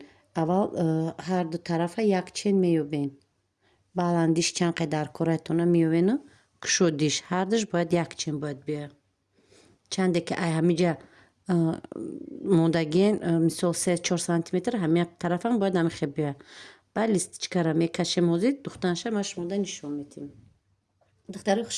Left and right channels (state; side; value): identical; both; correlation 1.00